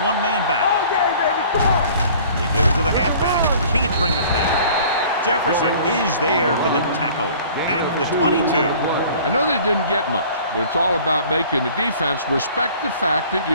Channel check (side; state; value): both; inverted; correlation -0.49